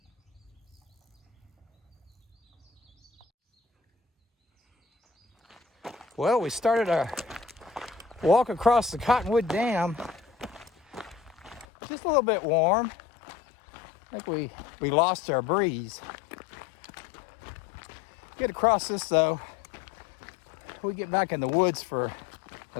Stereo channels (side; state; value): right; drops out; at 11.7 s